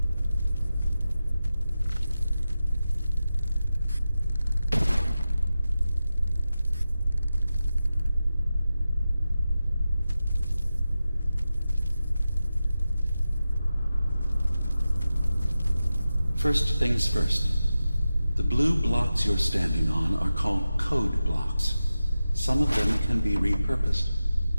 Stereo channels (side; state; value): both; inverted; correlation -0.93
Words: First things first. The blue blocks you're standing on are called code blocks. Some of them can be repurposed.